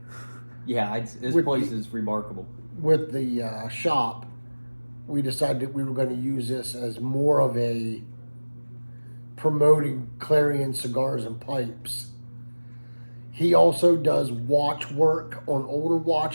yeah, this With place the- is remarkable. with the shop, we decided that we were going to use this as more of a promoting Clarion cigars and pipes. He also does watch work on older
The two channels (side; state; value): both; inverted; correlation -1.00